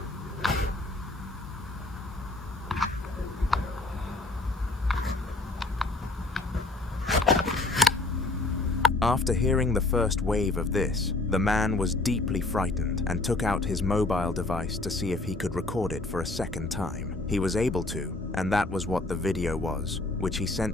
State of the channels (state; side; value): quieter; right; 3.0 dB